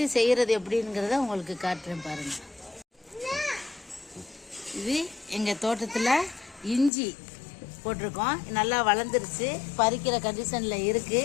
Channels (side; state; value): right; drops out; at 6.9 s